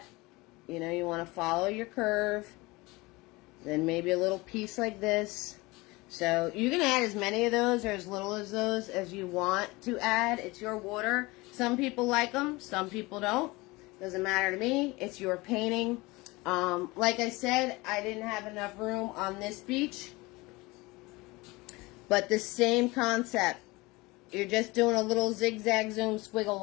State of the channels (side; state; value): right; quieter; 22.7 dB